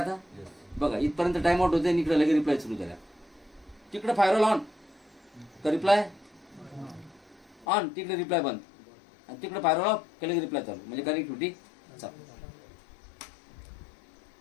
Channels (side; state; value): right; drops out; at 7.7 s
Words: आता बघा इथपर्यंत टाइम आउट होते, इकडे लगेच रिप्लाय सुरू झाल्या. तिकडे फायरवॉल ऑन तर रिप्लाय ऑन, तिकडे रिप्लाय बंद, आणि तिकडे फायरवॉल ऑफ केलं रिप्लाय चालू, म्हणजे कनेक्टिव्हिटी चालू.